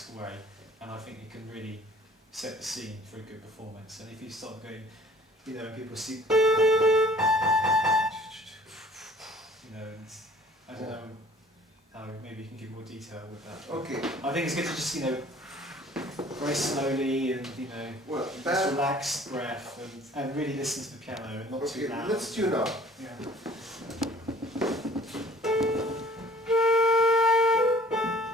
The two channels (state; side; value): normal; both; correlation 0.52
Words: way, and I think you can really set the scene for a good performance. And if you start going, and people see, and I don't know how maybe you can give more detail with that. Okay. I think it's good to just very slowly and just relaxed breath and really listen to the piano and not too loud. Let's tune up. Yeah.